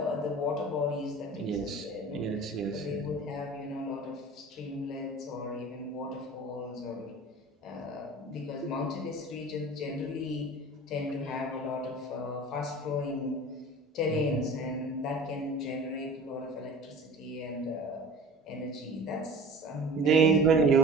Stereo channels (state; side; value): normal; both; correlation 0.40